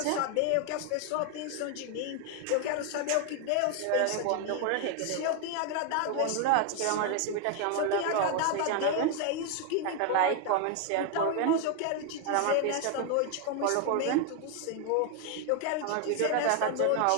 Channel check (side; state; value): both; different; correlation 0.00